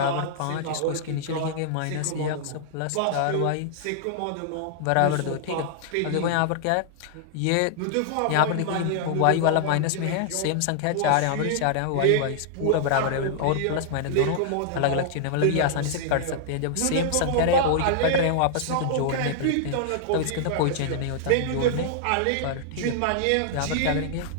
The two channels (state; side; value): different; both; correlation -0.01